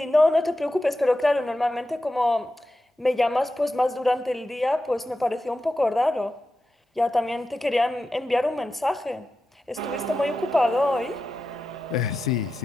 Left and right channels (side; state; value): both; normal; correlation 0.91